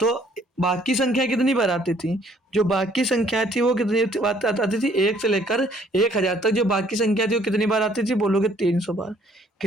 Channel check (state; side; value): normal; both; correlation 0.62